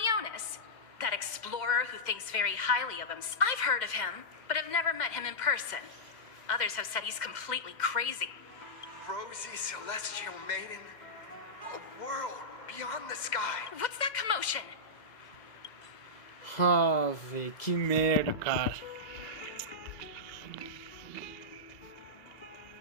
that explorer who thinks very highly of him. I've heard of him, but have never met him in person. Others have said he's completely crazy. Rosy Celestial Maiden, a world beyond the sky. What's that commotion? Ah, velho, que merda, cara.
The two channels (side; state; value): right; late; 2.1 ms